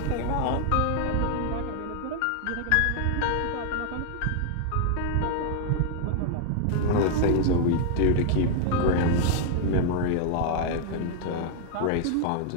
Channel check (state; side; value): different; both; correlation 0.00